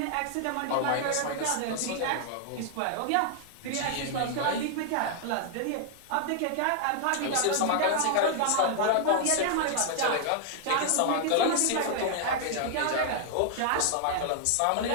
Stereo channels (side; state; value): both; different; correlation -0.01